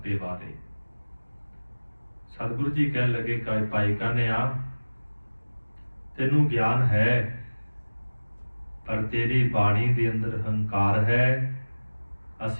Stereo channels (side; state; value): both; inverted; correlation -1.00